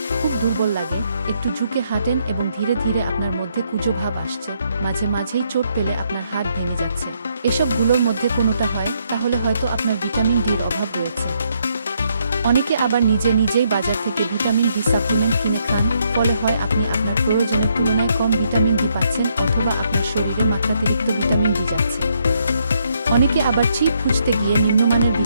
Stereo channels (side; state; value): both; inverted; correlation -0.74